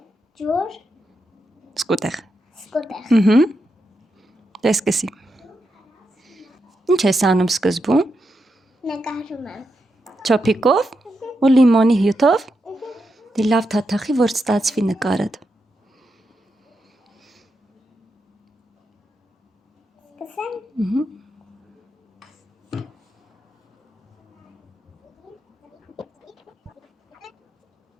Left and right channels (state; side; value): normal; both; correlation 0.85